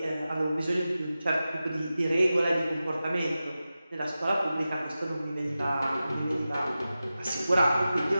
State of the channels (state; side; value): inverted; both; correlation -0.94